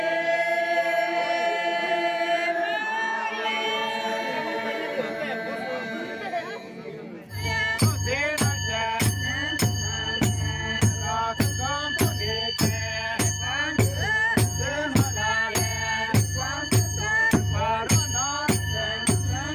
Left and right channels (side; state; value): both; identical; correlation 1.00